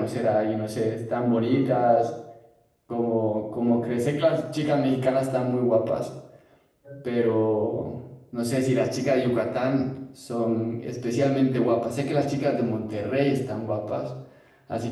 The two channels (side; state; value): both; identical; correlation 1.00